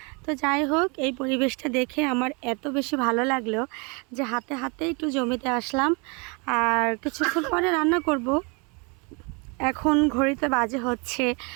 তো যাই হোক, এই পরিবেশটা দেখে আমার এত বেশি ভালো লাগলো যে হাতে হাতে একটু জমিতে আসলাম। আর কিছুক্ষণ পরে রান্না করব। এখন ঘড়িতে বাজে হচ্ছে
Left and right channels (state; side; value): quieter; left; 31.8 dB